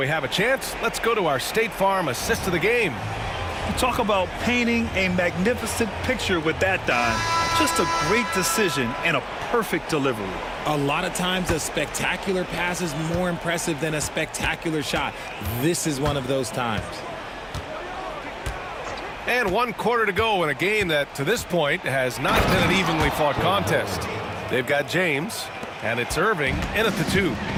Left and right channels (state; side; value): identical; both; correlation 1.00